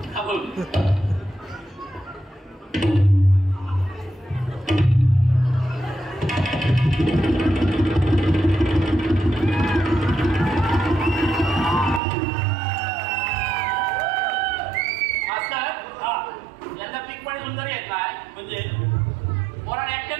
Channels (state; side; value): drops out; left; at 12.0 s